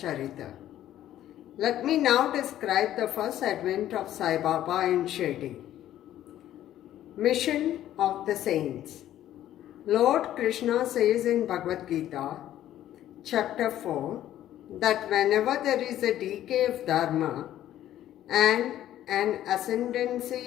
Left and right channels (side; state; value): right; quieter; 12.4 dB